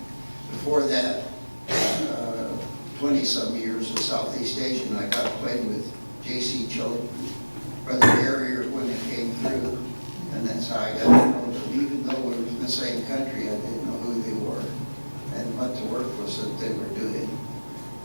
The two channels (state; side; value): inverted; both; correlation -1.00